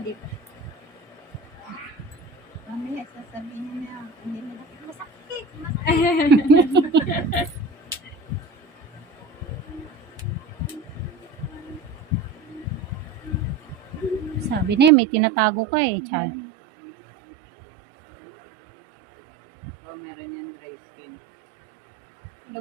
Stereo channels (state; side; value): drops out; left; at 14.9 s